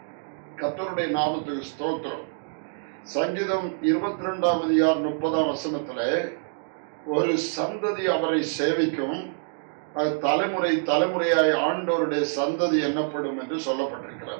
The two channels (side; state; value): left; silent; digital silence